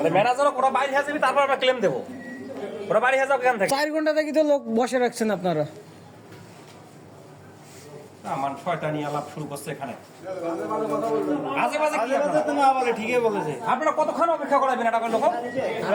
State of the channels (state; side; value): identical; both; correlation 1.00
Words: ম্যানেজারক ওরা বাইরে হয়ে যাবে, তারপর আমরা ক্লেম দেবো। ওরা বাইরে হয়ে যাবে এখান থেকে। 4 ঘন্টা থেকে তো লোক বসে রাখছেন আপনারা। না মান শয়তানি আলাপ শুরু করছে এখানে। আজে বাজে কি আপনারা? না বলে ঠিকই বলেছে। আপনারা কতক্ষণ অপেক্ষা করাবেন এটা লোক?